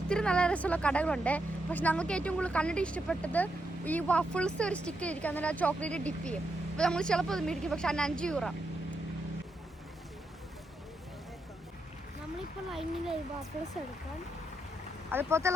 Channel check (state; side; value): normal; both; correlation 0.82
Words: നല്ല രസമുള്ള കടകളുണ്ട്. പക്ഷെ ഞങ്ങൾക്ക് ഏറ്റവും കൂടുതൽ കണ്ടിട്ട് ഇഷ്ടപ്പെട്ടത് ഈ വഫിൾസ് ഒരു സ്റ്റിക്ക് ഇരിക്കും, അന്നേരം ആ ചോക്ലേറ്റ് ഡിപ്പ് ചെയ്യും. അപ്പോൾ നമ്മൾ ചിലപ്പോൾ അത് മേടിക്കും, പക്ഷെ അതിന് €5. നമ്മളിപ്പോൾ ലൈനിൽ വഫിൾസ് എടുക്കാം. അതുപോലത്തെ